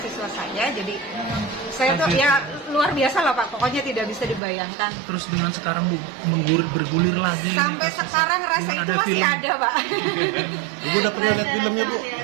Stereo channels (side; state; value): left; drops out; at 4.4 s